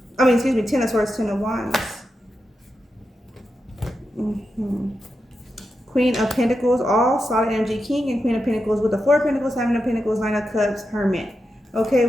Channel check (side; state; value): both; normal; correlation 0.88